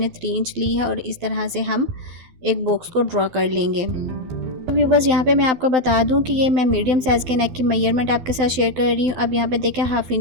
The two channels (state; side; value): late; left; 12 ms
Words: 3 इंच ली है। और इस तरह से हम एक बॉक्स को ड्रॉ कर लेंगे। व्यूवर्स, यहाँ पे मैं आपको बता दूं कि ये मैं मीडियम साइज़ के नेक की मेजरमेंट आपके साथ शेयर कर रही हूँ। अब यहाँ पे देखें, 1/2